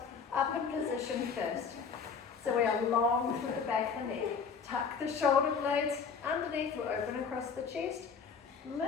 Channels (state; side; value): quieter; right; 5.9 dB